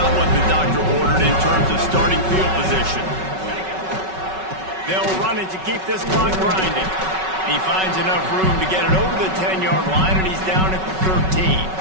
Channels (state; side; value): late; left; 5.3 ms